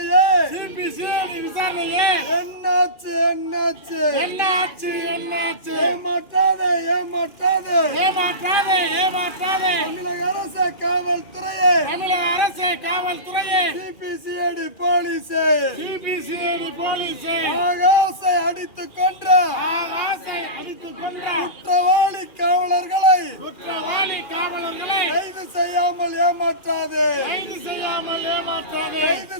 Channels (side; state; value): right; late; 2.4 ms